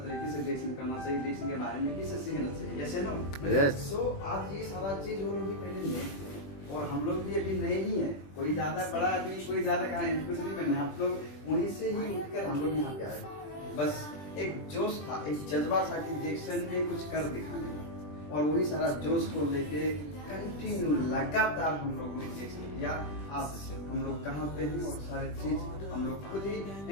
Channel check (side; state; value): right; late; 20 ms